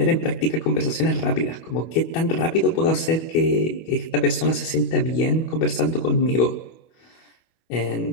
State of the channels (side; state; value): right; late; 25 ms